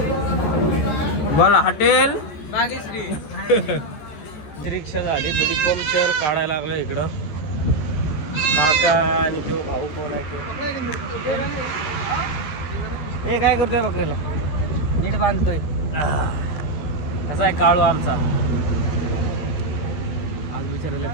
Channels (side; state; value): right; late; 13 ms